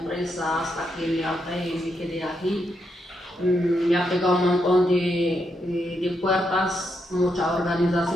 hasta que me harté y me quedé aquí. Me ha pegado un montón de puertas, mucha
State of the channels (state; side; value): normal; both; correlation 0.81